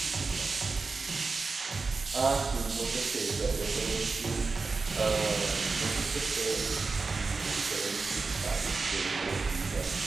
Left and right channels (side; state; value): left; quieter; 4.2 dB